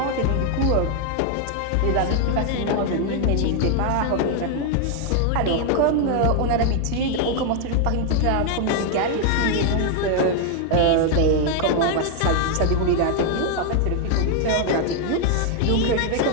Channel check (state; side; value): different; both; correlation 0.00